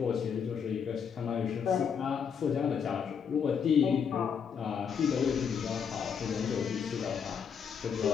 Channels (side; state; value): right; quieter; 7.0 dB